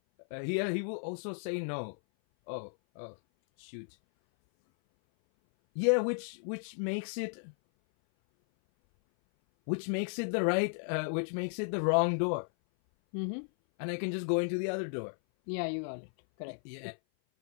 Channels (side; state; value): right; silent; 55 dB below the other